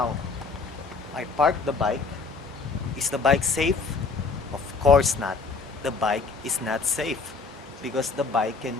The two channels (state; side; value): quieter; right; 4.4 dB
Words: I parked the bike. Is the bike safe? Of course not. The bike is not safe because the bike can